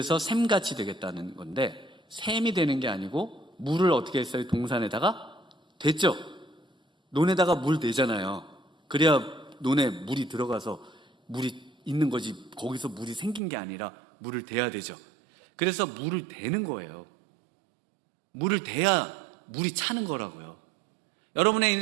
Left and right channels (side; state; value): left; drops out; at 13.4 s